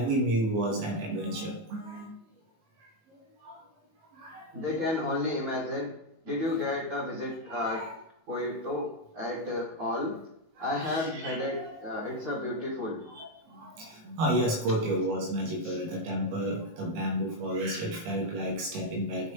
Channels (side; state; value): left; late; 19 ms